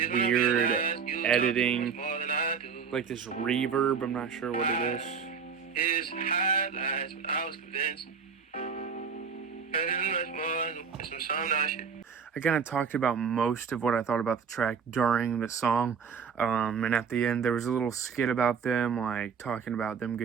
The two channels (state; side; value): quieter; left; 6.3 dB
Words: editing, like this reverb. I'm not sure what it is. His highlights when I was convinced. I kind of talked about most of what I thought about the track during the song, and at the end there was a little skit about them, like talking about them